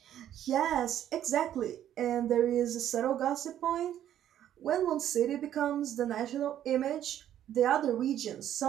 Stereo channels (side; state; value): left; quieter; 11.1 dB